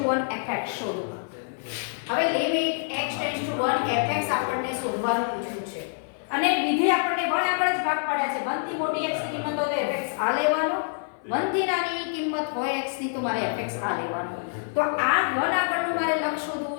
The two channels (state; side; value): silent; right; 61 dB below the other